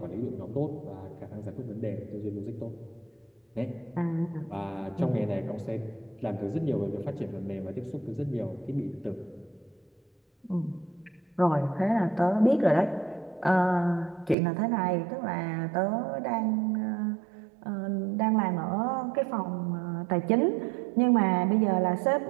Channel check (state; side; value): drops out; left; at 14.4 s